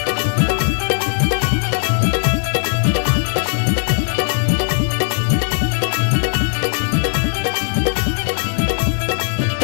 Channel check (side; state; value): right; silent; 62 dB below the other